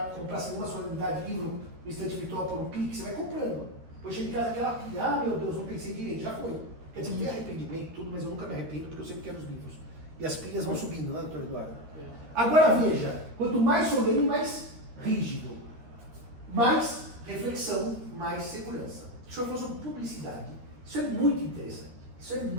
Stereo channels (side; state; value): left; late; 13 ms